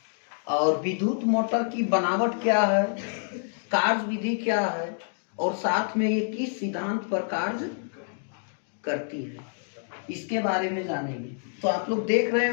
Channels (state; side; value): silent; right; digital silence